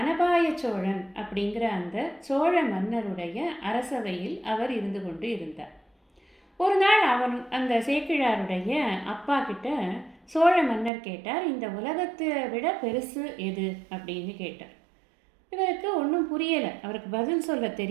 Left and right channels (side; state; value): left; drops out; at 10.9 s